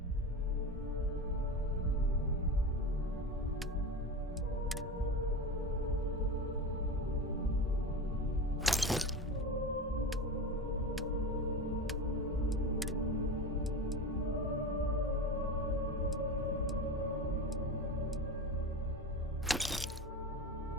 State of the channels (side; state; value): both; normal; correlation 0.26